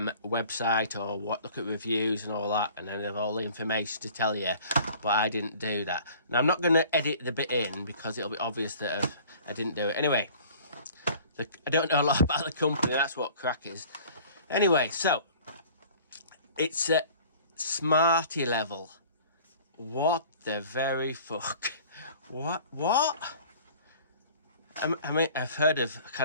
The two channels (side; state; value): both; inverted; correlation -0.48